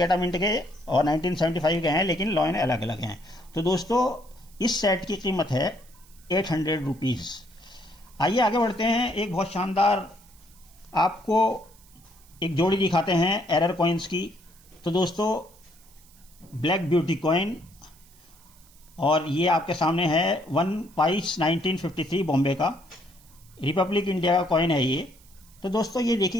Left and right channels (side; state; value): right; noise; hiss, 27 dB below the sound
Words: मिंट के, और 1975 के हैं, लेकिन कॉइन अलग अलग हैं। तो दोस्तों इस सेट की कीमत है 800 रुपीज़। आइए आगे बढ़ते हैं। एक बहुत शानदार आपको एक जोड़ी दिखाते हैं एरर कॉइन्स की। तो दोस्तों ब्लैक ब्यूटी कॉइन, और ये आपके सामने है 1 पाइस 1953 बॉम्बे का, रिपब्लिक इंडिया का कॉइन है ये। तो दोस्तों ये